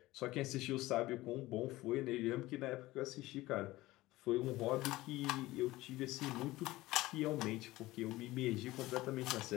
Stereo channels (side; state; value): right; quieter; 18.2 dB